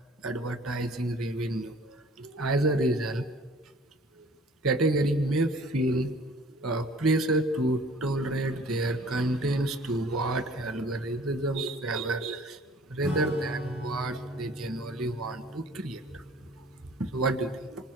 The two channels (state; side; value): normal; both; correlation 0.51